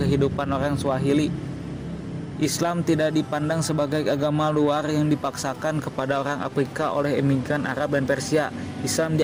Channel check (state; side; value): identical; both; correlation 1.00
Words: orang Swahili. Islam tidak dipandang sebagai agama luar yang dipaksakan kepada orang Afrika oleh imigran Arab dan Persia. Islam